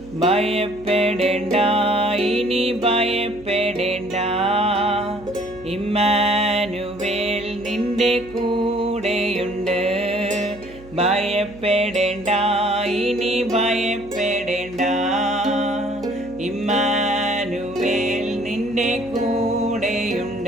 ഭയപ്പെടേണ്ട, ഇനി ഭയപ്പെടേണ്ട, ഇമ്മാനുവേൽ നിന്റെ കൂടെയുണ്ട്. ഭയപ്പെടേണ്ട, ഇനി ഭയപ്പെടേണ്ട, ഇമ്മാനുവേൽ നിന്റെ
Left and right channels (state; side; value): noise; right; hum, 20 dB below the sound